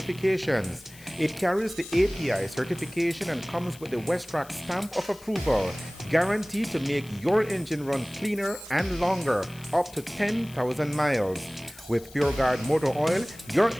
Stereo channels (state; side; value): noise; left; hiss, 21 dB below the sound